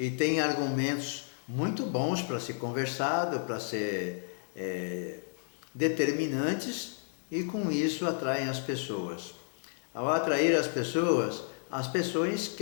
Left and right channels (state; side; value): silent; right; digital silence